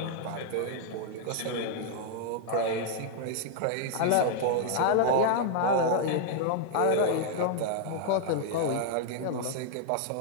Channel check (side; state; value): both; different; correlation 0.00